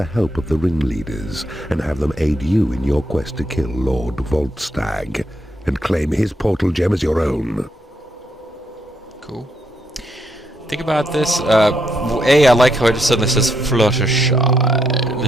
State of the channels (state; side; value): normal; both; correlation 0.77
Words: help of the ringleaders and have them aid you in your quest to kill Lord Voltstag and claim his portal gem as your own. Cool. Think about this. I like how it just suddenly says Fluttershy, and